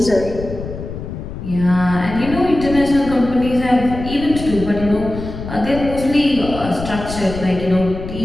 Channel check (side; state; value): left; noise; rumble, 9 dB below the sound